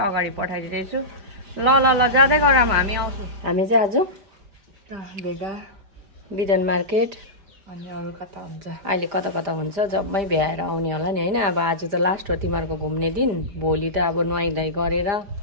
अगाडि पठाइदिँदैछु ल ल ल जाँदै गरौँ हामी आउँछौँ हामी चाहिँ आज भेगा बिदन मार्केट अनि अरू कता हुन्छ अहिले कता कता हुन्छ जम्मै भ्याएर आउने होला नि हैन अब आज त लास्ट हो तिमीहरूको घुम्ने दिन भोलि त अब नुहाइधुवाइ गरेर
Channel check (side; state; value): left; late; 5.0 ms